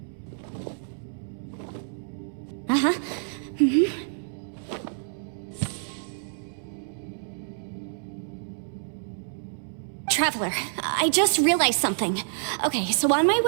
Uh-huh. Traveler, I just realized something. Okay, so on my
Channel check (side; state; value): left; silent; 60 dB below the other